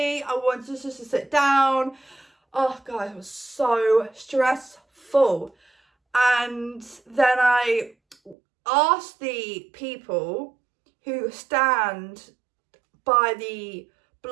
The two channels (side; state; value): left; drops out; at 8.3 s